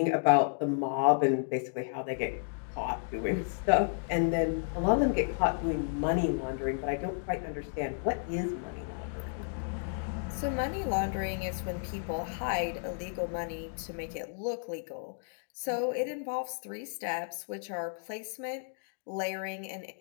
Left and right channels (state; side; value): silent; right; digital silence